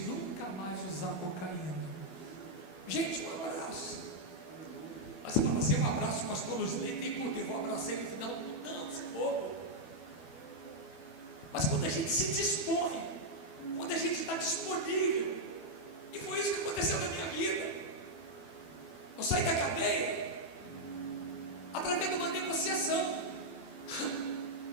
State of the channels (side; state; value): right; late; 12 ms